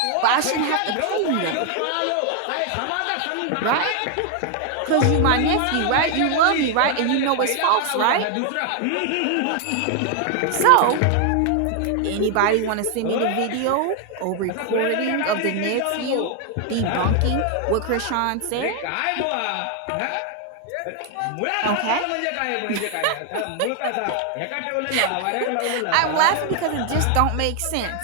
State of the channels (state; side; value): different; both; correlation 0.00